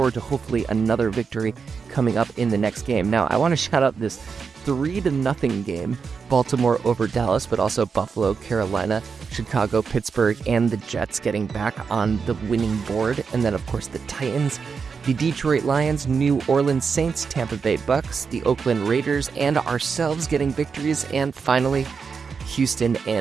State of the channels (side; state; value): left; quieter; 5.6 dB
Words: to hopefully another victory coming up in the next game. Now, I want to shout out this 3-0 game, Baltimore over Dallas, but also Buffalo, Carolina, Chicago, Pittsburgh, and the Jets getting back on the winning board. And then, of course, the Titans, the Detroit Lions, New Orleans Saints, Tampa Bay Bucks, the Oakland Raiders, and ourselves getting victories. And finally, Houston